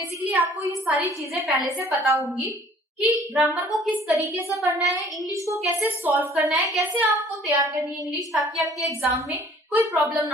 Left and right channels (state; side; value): normal; both; correlation 0.53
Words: आपको ये सारी चीजें पहले से पता होंगी कि ग्रामर को किस तरीके से पढ़ना है, इंग्लिश को कैसे सॉल्व करना है, कैसे आपको तैयार करनी है इंग्लिश, ताकि आपके एग्जाम में कोई प्रॉब्लम